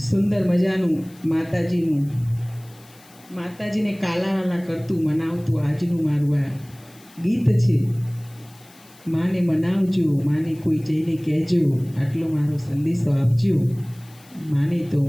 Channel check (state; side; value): noise; left; hiss, 26 dB below the sound